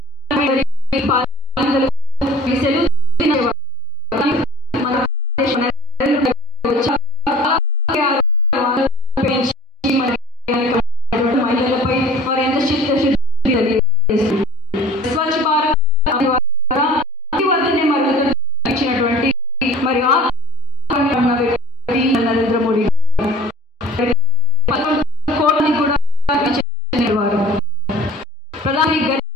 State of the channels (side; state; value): both; normal; correlation 0.48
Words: నరేంద్ర మోడీ కోట్లని కూడా వారు ప్రధాని